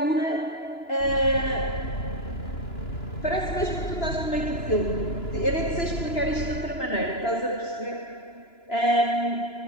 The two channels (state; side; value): late; right; 2.9 ms